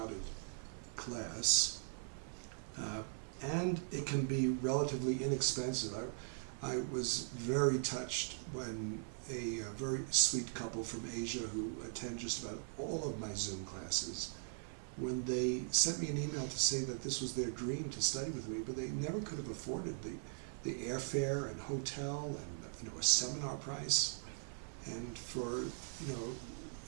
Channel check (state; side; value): silent; left; 51 dB below the other